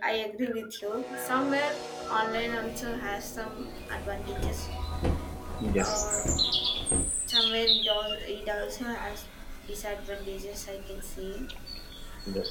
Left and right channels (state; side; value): identical; both; correlation 1.00